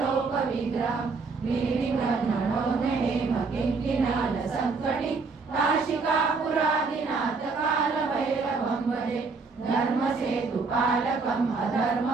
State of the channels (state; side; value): quieter; left; 4.4 dB